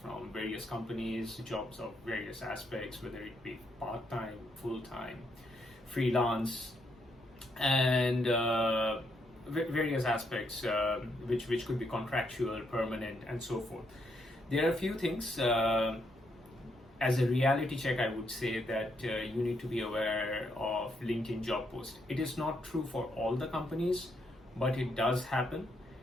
from various companies, jobs of various aspects, whether it be part-time, full-time, freelance, and various aspects which could be contractual, permanent, and so forth. There are a few things as a reality check, I would say that you need to be aware of LinkedIn job post. It is not true for all the companies, but it does happen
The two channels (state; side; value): normal; both; correlation 0.76